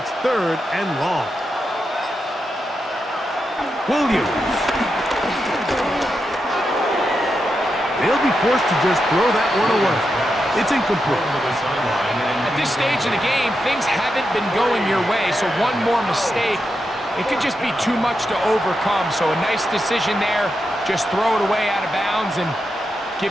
3rd and long. Williams. They'll be forced to just throw that one away. It's incomplete. At this stage of the game, things haven't been going your way, so one more mistake, it could just be too much to overcome. So a nice decision there. Just throw it away out of bounds and give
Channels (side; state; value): both; normal; correlation 0.86